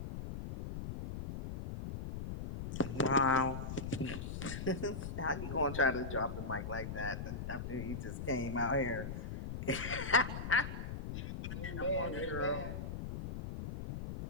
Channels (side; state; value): left; noise; rumble, 6 dB below the sound